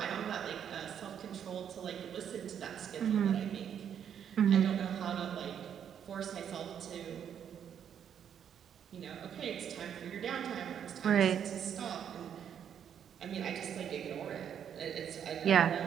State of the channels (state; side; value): quieter; left; 8.7 dB